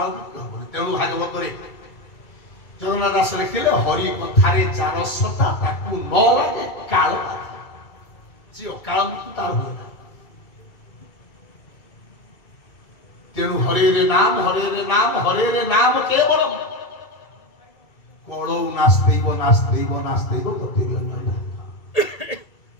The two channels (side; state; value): right; late; 2.3 ms